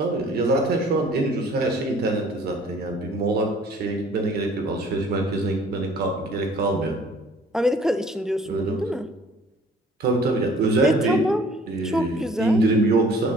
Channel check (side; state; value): both; normal; correlation 0.54